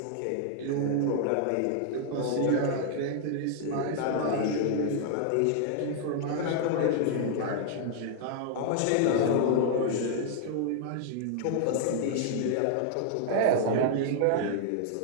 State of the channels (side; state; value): both; different; correlation -0.01